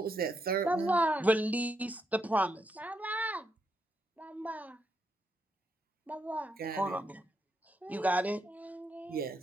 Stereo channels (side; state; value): both; normal; correlation 0.80